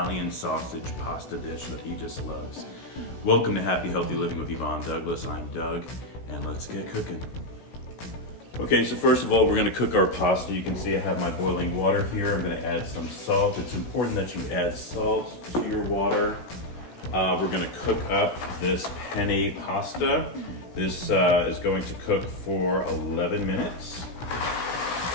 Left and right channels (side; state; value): right; late; 16 ms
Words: sausage pasta dish that he just loves. Welcome to Happy Healthy Living with Yvonne Douglas. I'm Doug, and let's get cooking. Okay, so first of all, we're going to cook our pasta. You can see I have my boiling water here. I'm going to add some salt. It's important that you add salt to your water. We're going to cook up this penne pasta. This is going to cook for 11 minutes.